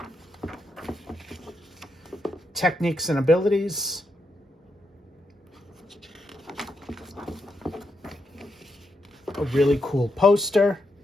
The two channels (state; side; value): normal; both; correlation 0.82